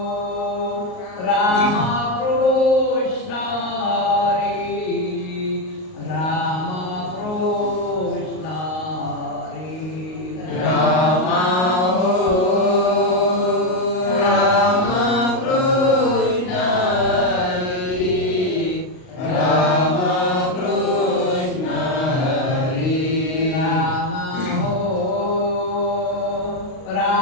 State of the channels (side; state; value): right; late; 38 ms